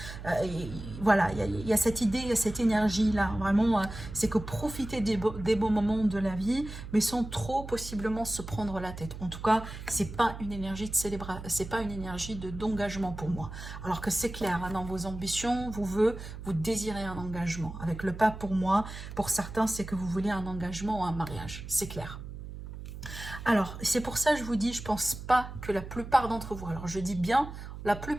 voilà, il y a cette idée, il y a cette énergie là, vraiment c'est que profiter des beaux moments de la vie, mais sans trop possiblement se prendre la tête. En tout cas, c'est pas une énergie de célébration, c'est pas une énergie d'engagement pour moi, alors que c'est clair, hein, dans vos ambitions, vous désirez un engagement. Avec le pas pour moi, pour certains, c'est que vous voulez un engagement ou un mariage. C'est clair. Alors, c'est pour ça que je vous dis, je pense pas que la plupart d'entre vous, alors je dis bien la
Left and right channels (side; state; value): right; noise; hum, 10 dB below the sound